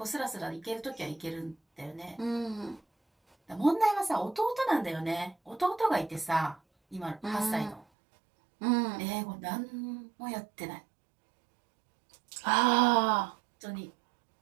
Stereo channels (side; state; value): left; drops out; at 7.9 s